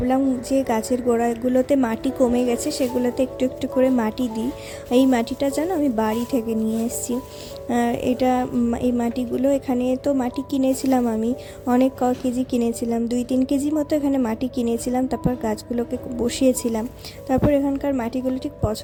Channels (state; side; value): identical; both; correlation 1.00